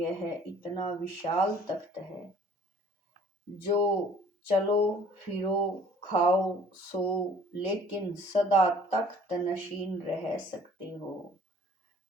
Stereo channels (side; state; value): both; normal; correlation 0.53